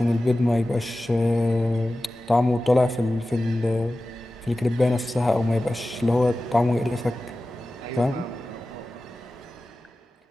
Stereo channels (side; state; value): both; normal; correlation 0.95